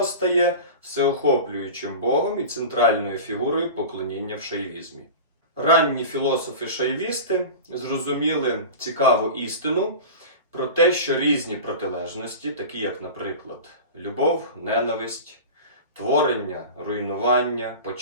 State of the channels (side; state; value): both; inverted; correlation -0.32